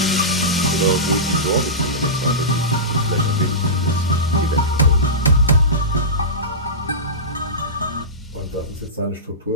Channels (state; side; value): normal; both; correlation -0.18